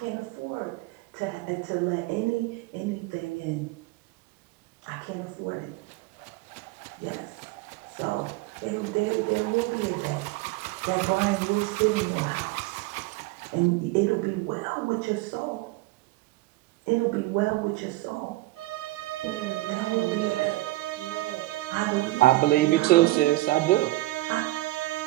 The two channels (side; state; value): left; quieter; 19.5 dB